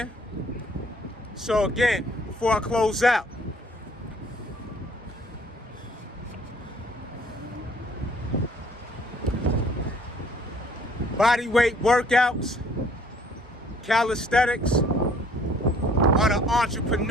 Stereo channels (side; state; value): both; normal; correlation 0.59